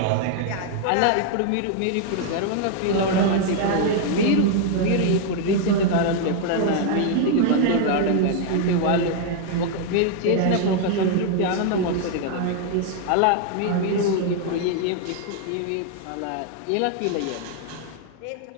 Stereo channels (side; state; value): both; different; correlation 0.00